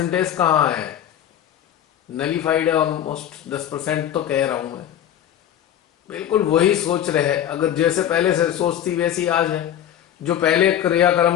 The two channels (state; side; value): quieter; right; 10.6 dB